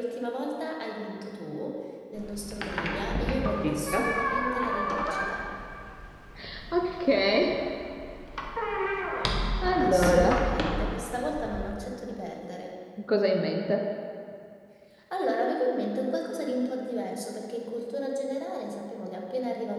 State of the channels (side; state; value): both; identical; correlation 1.00